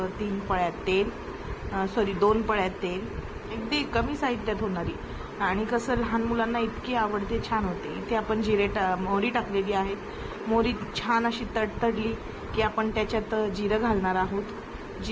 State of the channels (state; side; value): identical; both; correlation 1.00